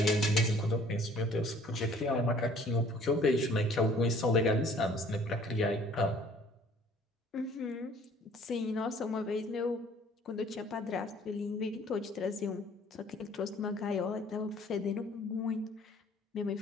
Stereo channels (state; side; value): normal; both; correlation 0.55